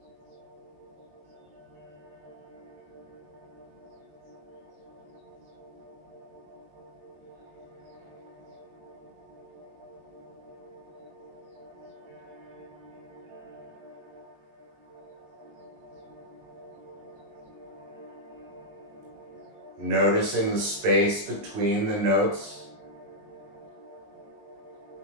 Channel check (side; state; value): left; late; 19 ms